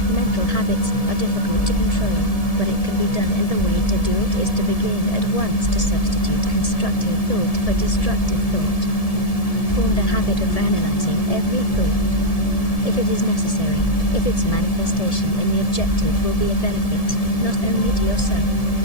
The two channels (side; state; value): right; late; 1.7 ms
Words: Mental habits are difficult to control, but it can be done, and the way to do it is to begin at once to substitute constructive thought for destructive thought. Form the habit of analyzing every thought. If it is necessary, if its manifestation in the objective will be a benefit, not only to yourself,